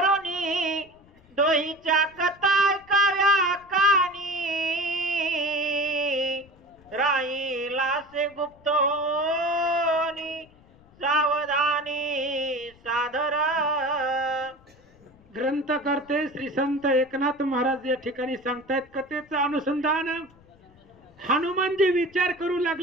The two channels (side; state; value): left; noise; rumble, 28 dB below the sound